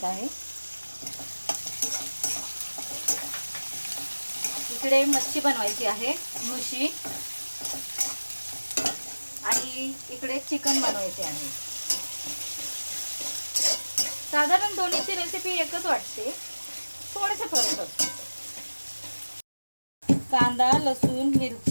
आहे. इकडे मच्छी बनवायची आहे, मुशी, आणि इकडे चिकन बनवायचे आहे. साधारण दोन्हीची रेसिपी एकच वाटते, थोडेसे फरक असतो. कांदा, लसूण,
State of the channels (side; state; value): both; inverted; correlation -1.00